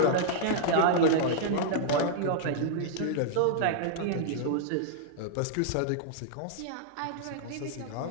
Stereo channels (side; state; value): both; different; correlation -0.01